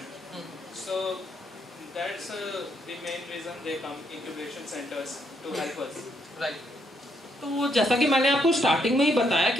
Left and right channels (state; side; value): normal; both; correlation 0.74